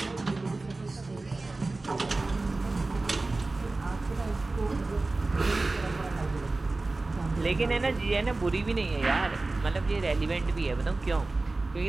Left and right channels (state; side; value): quieter; left; 3.3 dB